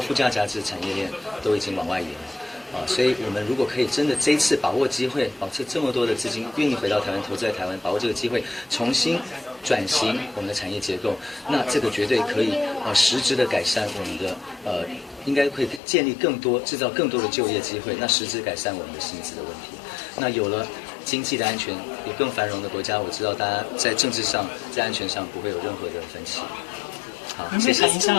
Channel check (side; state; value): right; drops out; at 15.8 s